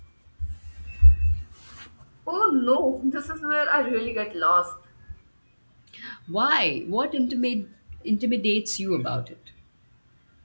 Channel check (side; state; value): both; inverted; correlation -1.00